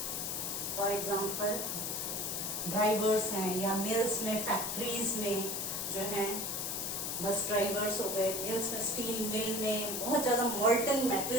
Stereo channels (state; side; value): noise; left; hiss, 2 dB below the sound